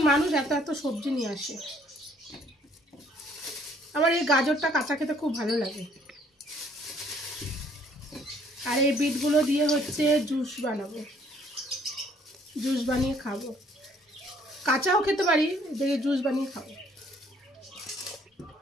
মানুষ এত এত সবজি নিয়ে আসে। আমার এই গাজরটা কাঁচা খেতে খুব ভালো লাগে। আর এই বিটগুলো দিয়ে হচ্ছে জুস বানাবো, জুস বানিয়ে খাবো। কাঁচাও খেতে পারি, দেখে জুস বানিয়ে খাবো।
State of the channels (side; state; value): both; normal; correlation 0.62